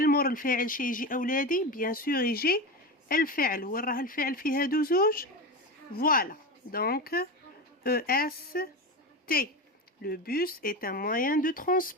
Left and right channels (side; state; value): both; normal; correlation 0.22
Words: مور الفاعل شي يجي أولادي بيان سور يجي الفعل. وين راه الفعل في هادو زوج؟ فوالا دونك EST. Le bus est un moyen de